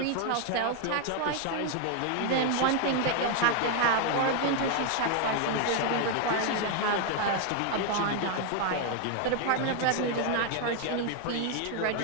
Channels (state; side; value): different; both; correlation 0.01